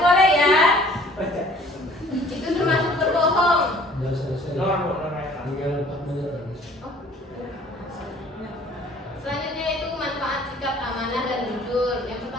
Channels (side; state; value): both; normal; correlation 0.53